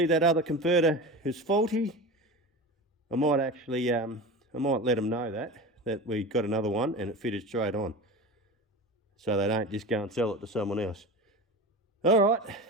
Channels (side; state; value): both; normal; correlation 0.30